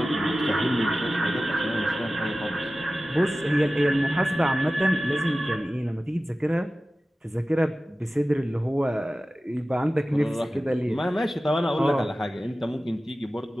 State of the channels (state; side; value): normal; both; correlation 0.96